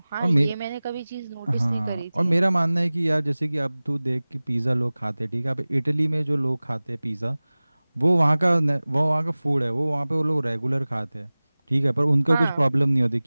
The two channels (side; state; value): both; inverted; correlation -0.99